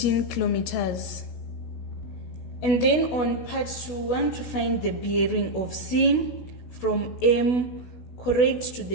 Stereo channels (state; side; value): late; right; 16 ms